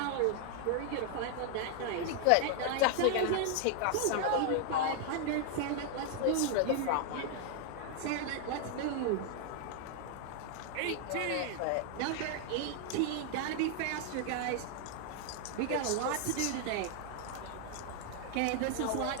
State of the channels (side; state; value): both; different; correlation 0.00